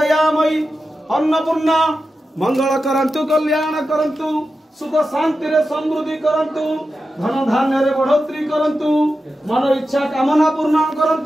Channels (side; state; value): both; normal; correlation 0.91